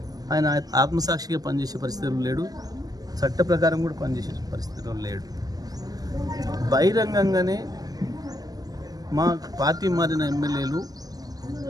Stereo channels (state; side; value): late; left; 0.18 ms